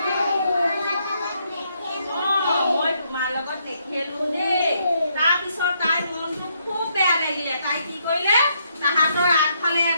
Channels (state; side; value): inverted; both; correlation -0.75